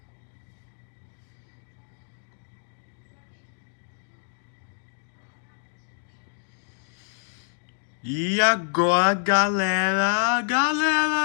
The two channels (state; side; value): silent; right; 60 dB below the other